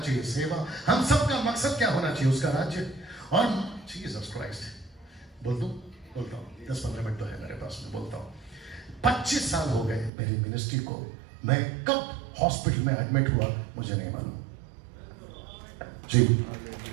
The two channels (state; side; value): drops out; left; at 10.1 s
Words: सेवा। हम सबका मकसद क्या होना चाहिए? उसका राज्य। और जीसस क्राइस्ट। बोलता हूं 10-15 मिनट तो है मेरे पास में, बोलता हूं 25 साल हो गए मेरी मिनिस्ट्री को। मैं कब हॉस्पिटल में एडमिट हुआ मुझे नहीं मालूम। जी